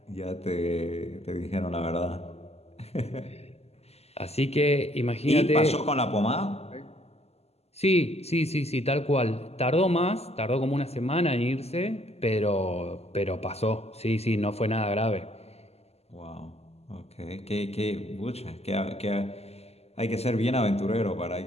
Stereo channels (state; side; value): late; right; 0.30 ms